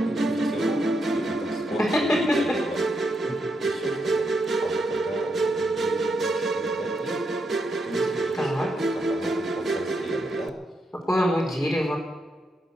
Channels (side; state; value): both; normal; correlation 0.81